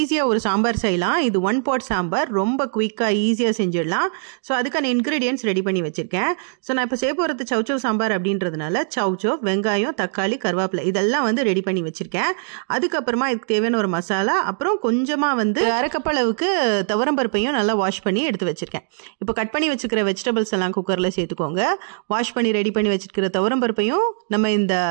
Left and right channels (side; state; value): left; silent; 65 dB below the other